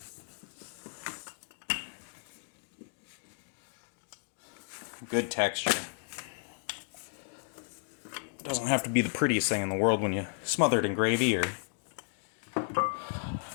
Good texture. It doesn't have to be the prettiest thing in the world when you smother it in gravy or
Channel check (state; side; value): silent; right; digital silence